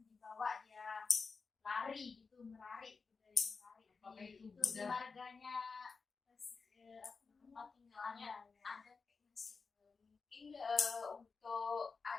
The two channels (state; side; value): quieter; right; 4.8 dB